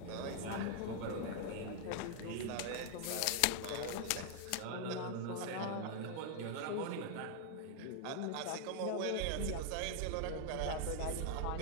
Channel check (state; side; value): different; both; correlation 0.00